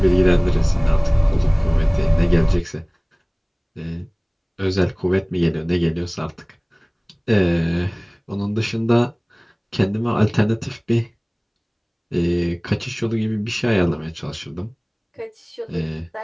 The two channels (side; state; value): both; identical; correlation 1.00